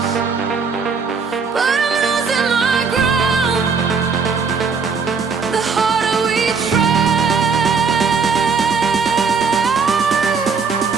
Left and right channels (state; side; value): quieter; left; 5.3 dB